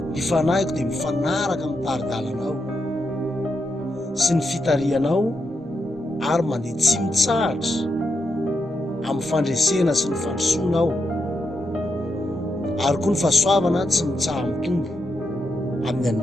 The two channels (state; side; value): normal; both; correlation 0.84